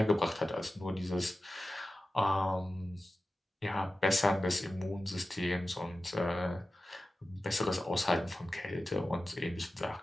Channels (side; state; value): both; normal; correlation 0.94